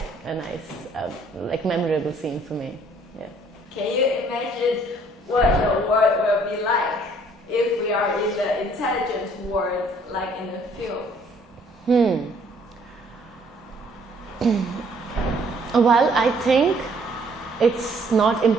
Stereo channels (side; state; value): both; normal; correlation 0.61